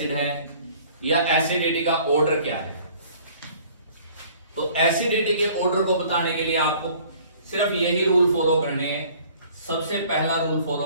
है, या एसिडिटी का ऑर्डर क्या है। तो एसिडिटी के ऑर्डर को बताने के लिए आपको सिर्फ यही रूल फॉलो करने हैं। सबसे पहला रूल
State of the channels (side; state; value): both; inverted; correlation -0.53